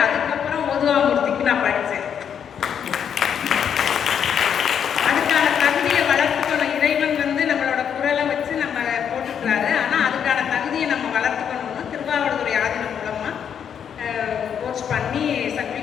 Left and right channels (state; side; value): quieter; right; 8.1 dB